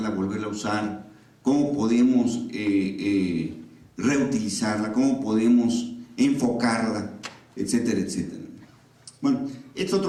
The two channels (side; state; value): both; identical; correlation 1.00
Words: volverla a usar? ¿Cómo podemos reutilizarla? ¿Cómo podemos enfocarla? Etcétera, etcétera. Bueno, este